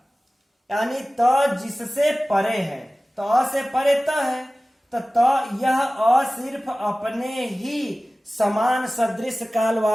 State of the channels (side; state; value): both; normal; correlation 0.97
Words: यानी त जिससे परे है, त से परे त है, तो त यह अ सिर्फ अपने ही समान सदृश काल